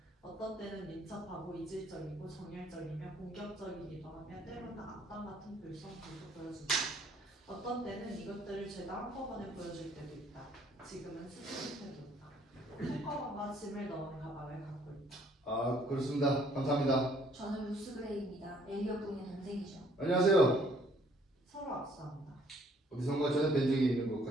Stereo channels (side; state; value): both; normal; correlation 0.62